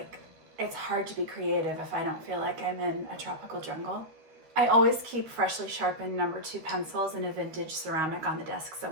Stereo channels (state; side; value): late; left; 13 ms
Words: it's hard to be creative if I don't feel like I'm in a tropical jungle. I always keep freshly sharpened number 2 pencils in a vintage ceramic on the desk